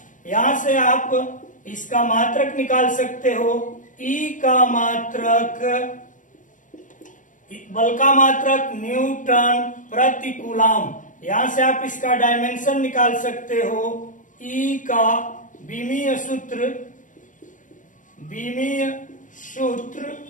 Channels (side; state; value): right; late; 0.37 ms